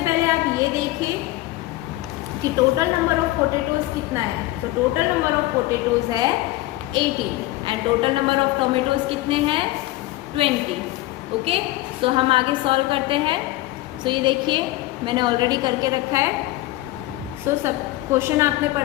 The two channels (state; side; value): quieter; right; 17.6 dB